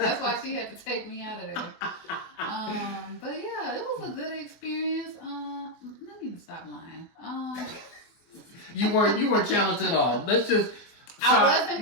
why she had to take me out of there. But yeah, it was a good experience. Let me stop lying. You weren't challenged at all. Let's just. I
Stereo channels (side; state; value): right; late; 24 ms